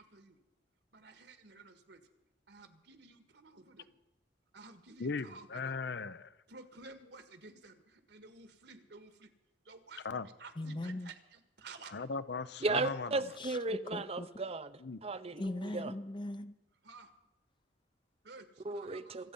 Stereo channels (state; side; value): normal; both; correlation 0.28